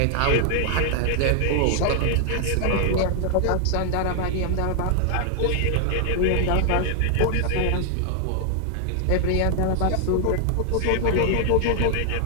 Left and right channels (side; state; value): both; different; correlation 0.00